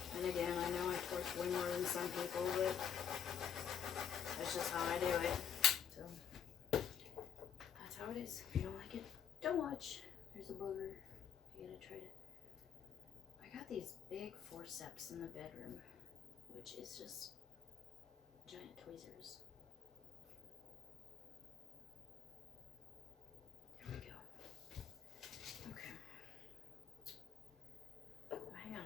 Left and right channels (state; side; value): quieter; right; 8.0 dB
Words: And again, I know I torch way more than some people, but that's just how I do it. So, that's how it is. If you don't like it, don't watch. There's a booger. I gotta try to... I got these big forceps in the bedroom, which is just giant tweezers. There we go. Okay. Hang on